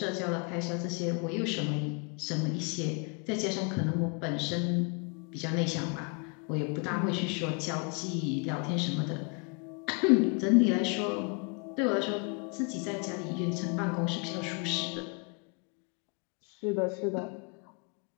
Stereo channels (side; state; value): right; quieter; 35.1 dB